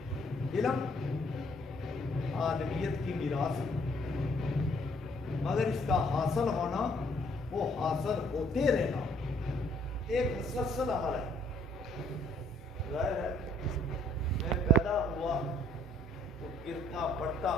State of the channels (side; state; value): both; normal; correlation 0.63